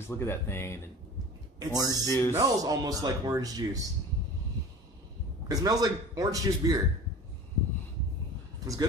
look at that thing and orange juice. It smells almost like orange juice. It smells like orange juice beer. It's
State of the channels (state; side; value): normal; both; correlation 0.39